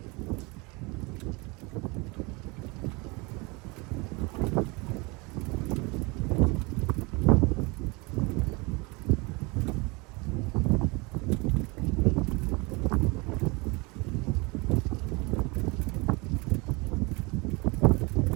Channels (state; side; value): quieter; left; 27.1 dB